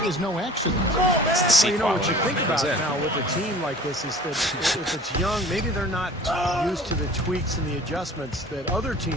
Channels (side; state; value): both; normal; correlation 0.45